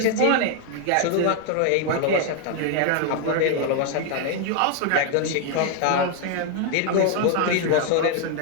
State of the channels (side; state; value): both; different; correlation 0.00